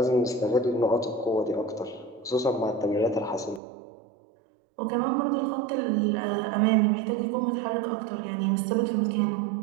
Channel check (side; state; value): left; drops out; at 3.6 s